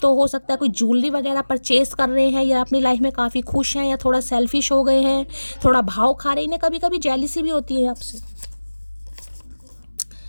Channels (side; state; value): both; inverted; correlation -1.00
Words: तो हो सकता है कोई ज्वेलरी वगैरह परचेस कर रहे हैं या अपनी लाइफ में काफ़ी खुश हैं या थोड़ा सेल्फिश हो गए हैं, थोड़ा भाव खा रहे हैं, इन्हें कभी कभी जेलसी भी होती है आपसे।